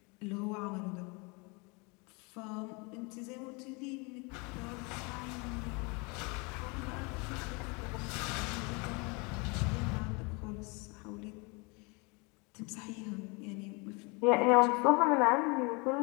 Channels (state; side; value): quieter; right; 29.7 dB